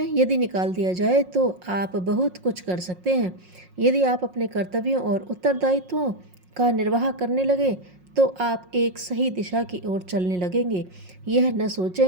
यदि निकाल दिया जाए तो आप बहुत कुछ कर सकते हैं। यदि आप अपने कर्तव्यों और उत्तरदायित्वों का निर्वाह करने लगे, तो आप एक सही दिशा की ओर चलने लगेंगे। यह न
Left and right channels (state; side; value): late; left; 5.5 ms